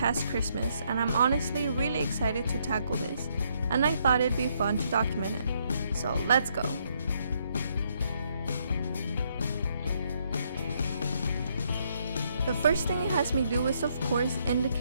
Christmas, and I'm honestly really excited to tackle this, and I thought it'd be fun to document it. So let's go. The first thing it has me do is of course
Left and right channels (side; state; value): both; inverted; correlation -0.72